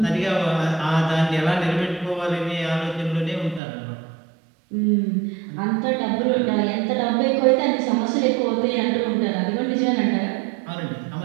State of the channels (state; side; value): drops out; left; at 3.6 s